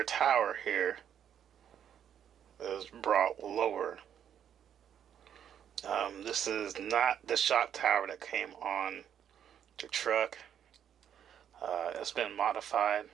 tower here is brought lower. This is not the shock tower that came on the truck. It's been modified,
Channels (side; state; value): left; quieter; 9.2 dB